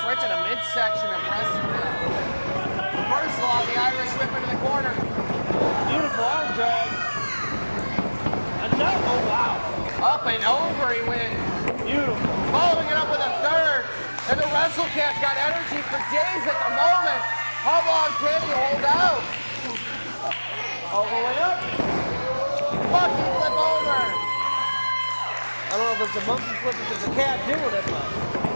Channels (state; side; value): inverted; both; correlation -1.00